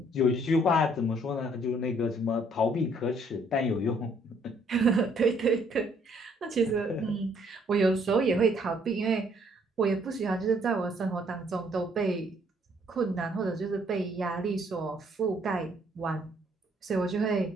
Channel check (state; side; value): normal; both; correlation 0.65